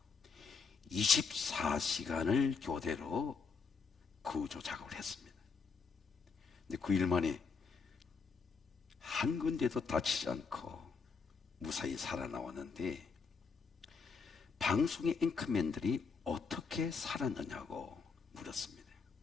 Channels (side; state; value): right; quieter; 5.1 dB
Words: 24시간을 교대로 구조 작업을 했습니다. 근데 9일 만에 한 군데도 다치지 않고 무사히 살아나왔는데, 방송의 앵커맨들이 어떻게 살았느냐고 물었습니다.